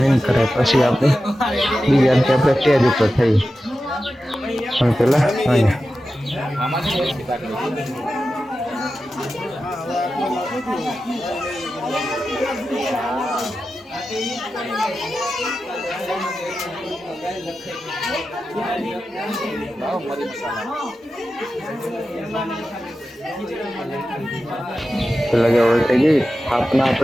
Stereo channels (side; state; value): both; normal; correlation 0.92